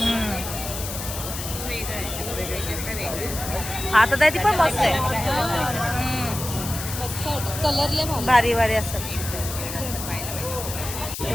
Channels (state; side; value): noise; left; hiss, 7 dB below the sound